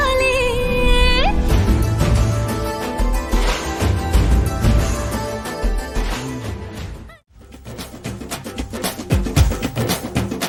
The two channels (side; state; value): both; identical; correlation 1.00